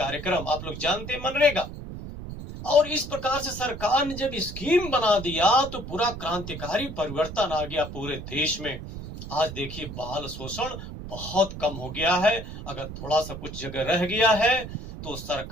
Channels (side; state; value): right; noise; rumble, 10 dB below the sound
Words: आप लोग जानते हैं, मनरेगा। और इस प्रकार से सरकार ने जब स्कीम बना दिया तो पूरा क्रांतिकारी परिवर्तन आ गया पूरे देश में। आज देखिए बाल शोषण बहुत कम हो गया है। अगर थोड़ा सा कुछ जगह रह गया है तो